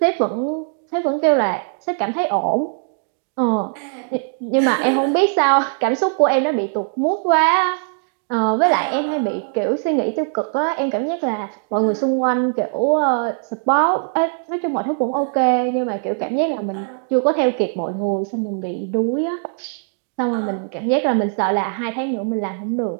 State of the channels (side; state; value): left; silent; digital silence